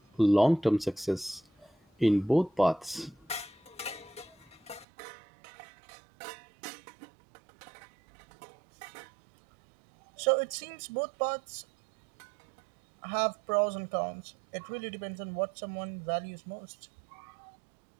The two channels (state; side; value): drops out; left; at 4.9 s